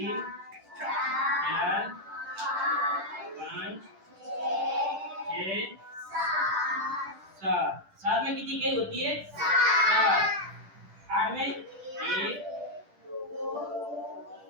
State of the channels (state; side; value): late; left; 10 ms